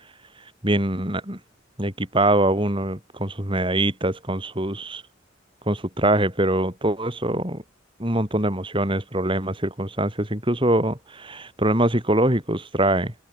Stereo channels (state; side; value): normal; both; correlation 0.52